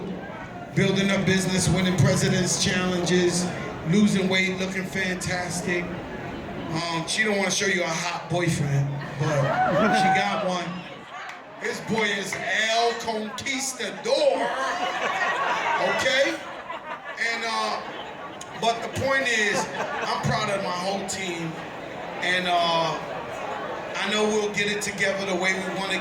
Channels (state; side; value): identical; both; correlation 1.00